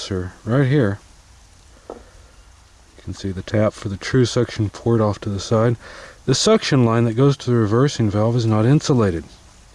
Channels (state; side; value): identical; both; correlation 1.00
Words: right here. You can see the tap for the true suction port off to the side. The suction line that goes to the reversing valve is not insulated.